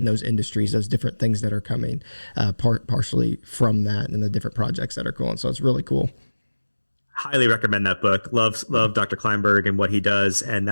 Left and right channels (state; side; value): inverted; both; correlation -1.00